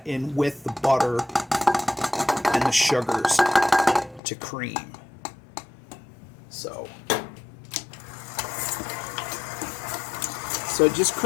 in with the butter and the sugars to cream. So just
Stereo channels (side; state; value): right; drops out; at 4.2 s